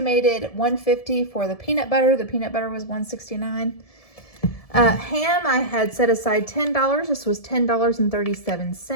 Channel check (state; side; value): late; right; 1.7 ms